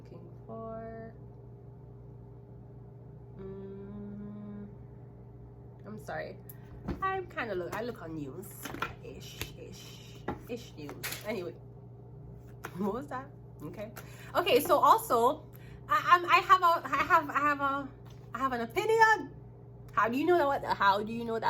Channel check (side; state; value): both; identical; correlation 1.00